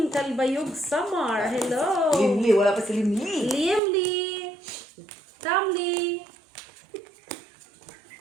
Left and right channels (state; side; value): drops out; left; at 3.8 s